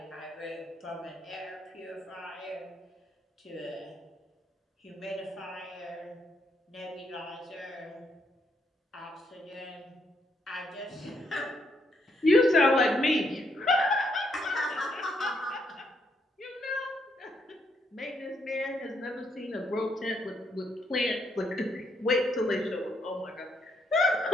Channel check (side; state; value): both; normal; correlation 0.75